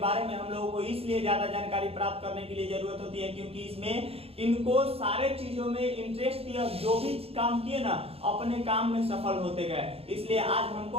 में हम लोगों को इसलिए ज्यादा जानकारी प्राप्त करने के लिए जरूरत होती है क्योंकि इसमें इनको सारे चीजों में इंटरेस्ट दिया, जो भी काम किए ना अपने काम में सफल होते गए, इसलिए आज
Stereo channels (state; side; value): late; left; 0.28 ms